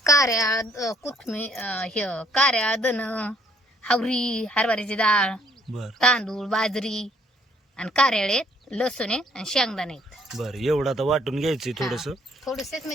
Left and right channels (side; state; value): both; normal; correlation 0.64